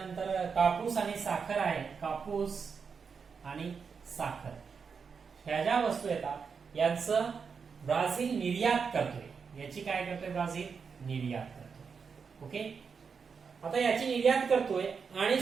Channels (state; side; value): quieter; left; 5.8 dB